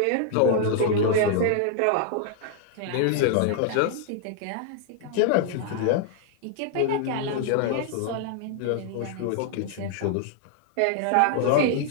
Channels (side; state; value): both; different; correlation 0.00